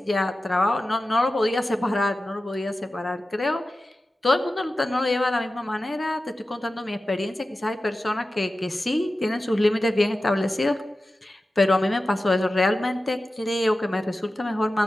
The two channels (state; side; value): normal; both; correlation 0.94